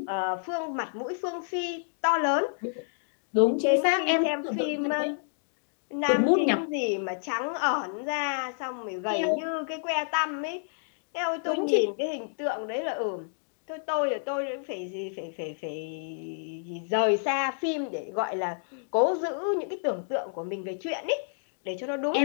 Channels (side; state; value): right; silent; digital silence